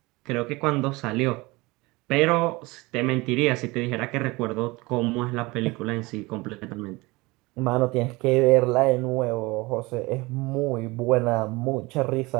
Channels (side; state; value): left; quieter; 23.0 dB